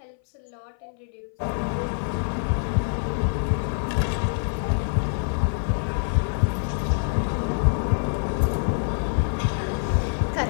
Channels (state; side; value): silent; right; 60 dB below the other